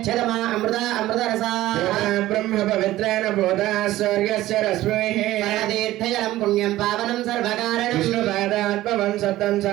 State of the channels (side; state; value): left; quieter; 15.6 dB